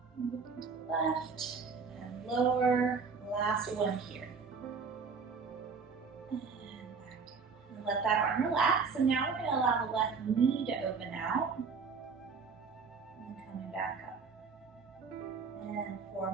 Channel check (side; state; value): left; quieter; 5.2 dB